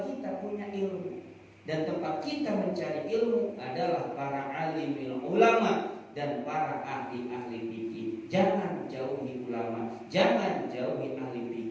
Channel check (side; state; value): both; identical; correlation 1.00